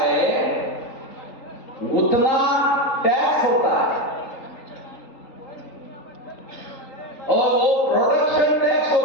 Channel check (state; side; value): late; right; 3.8 ms